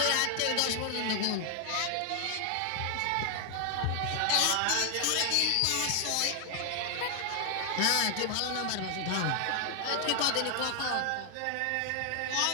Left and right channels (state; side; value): different; both; correlation 0.00